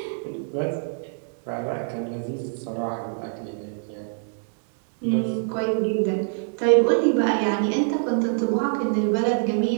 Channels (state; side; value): silent; left; 62 dB below the other